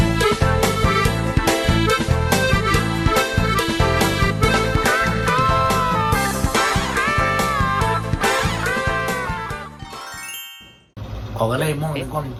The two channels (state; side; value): identical; both; correlation 1.00